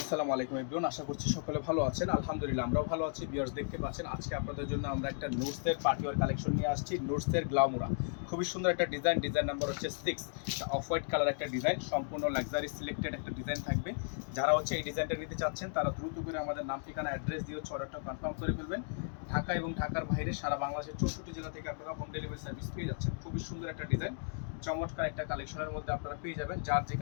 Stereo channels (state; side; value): silent; right; digital silence